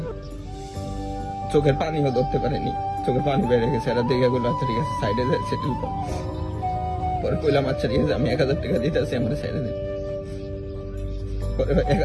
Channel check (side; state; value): both; identical; correlation 1.00